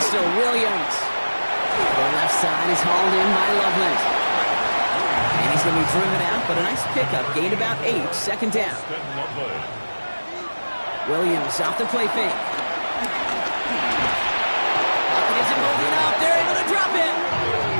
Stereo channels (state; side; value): inverted; both; correlation -1.00